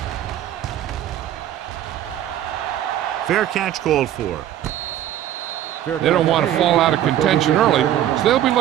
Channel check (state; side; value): quieter; left; 11.8 dB